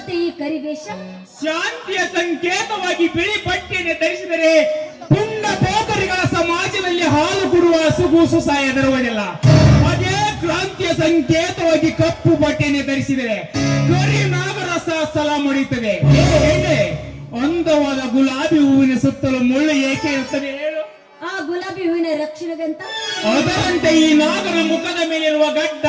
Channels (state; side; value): identical; both; correlation 1.00